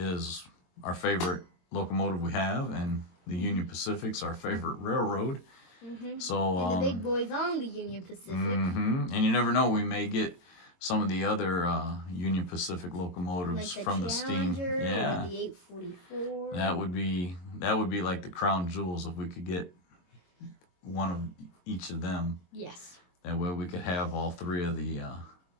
our favorite locomotive we have, and the Union Pacific's our favorite railroad. So and the big boy's on the Union Pacific. And you never know, we may get some of the other Union Pacific locomotives like from the steam. Yeah, or the 844. That would be like the crown jewels if we could get one of each of them. Yes. That way we could have all three of the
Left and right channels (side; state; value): right; late; 22 ms